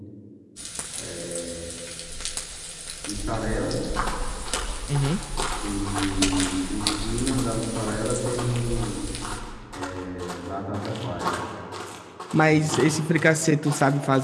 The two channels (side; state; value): both; identical; correlation 1.00